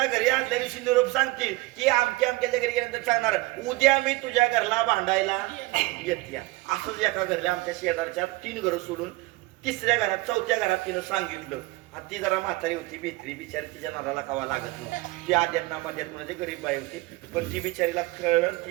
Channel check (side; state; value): left; quieter; 21.3 dB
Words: घरी आदल्या दिवशी निरोप सांगतील की आमच्या घरी गेल्यानंतर सांगणार उद्या मी तुझ्या घरला भांडायला येते असंच एका घरला आमच्या शेजारच्या 3 घरं सोडून 3ऱ्या घरात 4थ्या घरात तिनं सांगितलं आणि ती जरा म्हातारी होती भित्री बिचारी तिच्या नराला कावा लागत नव्हती ती आद्यात नामाद्यात म्हणजे गरीब बाई होती पण ती बिचारीला कळलं ती